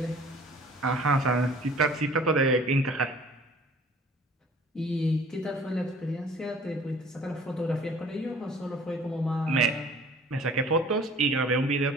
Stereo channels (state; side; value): normal; both; correlation 0.50